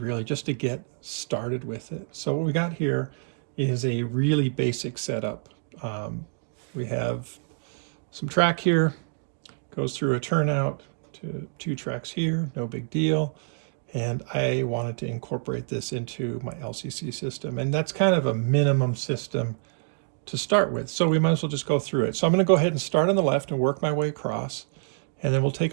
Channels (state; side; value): silent; left; 60 dB below the other